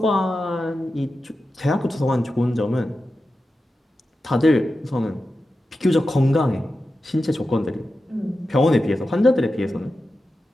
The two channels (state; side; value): normal; both; correlation 0.92